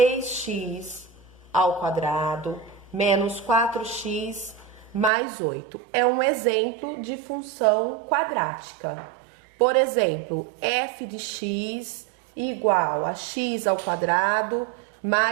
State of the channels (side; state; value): left; drops out; at 5.1 s